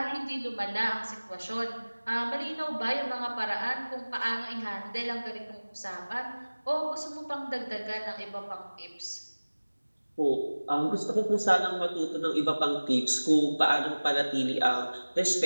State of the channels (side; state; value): both; inverted; correlation -1.00